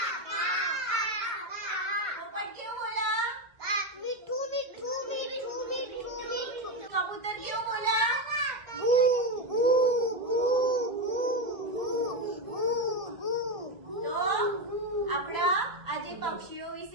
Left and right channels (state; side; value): late; left; 2.1 ms